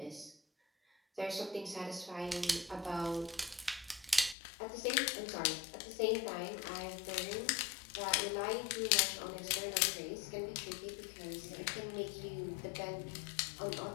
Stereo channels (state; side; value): drops out; right; at 4.4 s